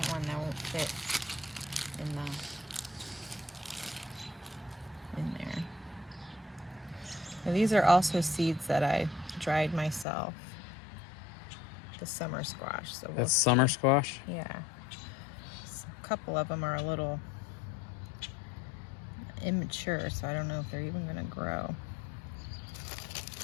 one that won't fit in there. Now, these are also seeds that I dried myself. The summer squash. So That's summer squash? Yeah. A couple of them are a little immature, so I don't know if they're even going to grow.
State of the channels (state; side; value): drops out; right; at 10.1 s